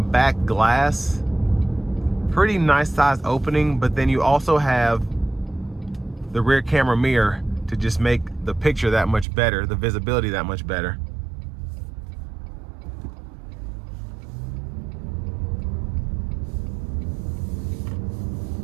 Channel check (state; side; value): drops out; left; at 9.2 s